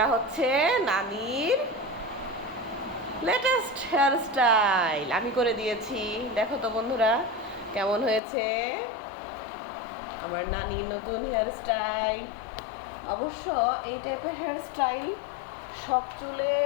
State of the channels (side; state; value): right; drops out; at 8.2 s